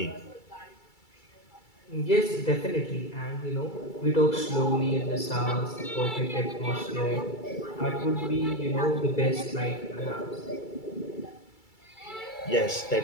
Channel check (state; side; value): late; right; 2.3 ms